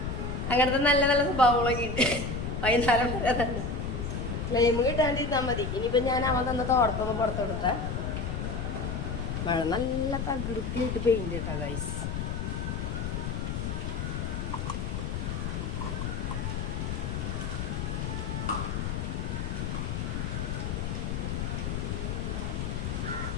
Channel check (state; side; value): noise; left; rumble, 2 dB below the sound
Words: അങ്ങനത്തെ നല്ല നല്ല സ്വഭാവങ്ങളൊക്കെ ഉണ്ട്. വൈകുന്നേരം വരെ തന്നെ ക്ലെയിം കിട്ടാണ്ടിരുന്നാൽ മതി. ഇനിയിപ്പോൾ ഞാൻ അവൻ തന്ന തോടത്തൊന്ന് പുറത്തെടുത്ത മഴ നല്ല തകൃതിയായിട്ട് പെയിന്റ് ഇട്ടാ ഗൈസ്.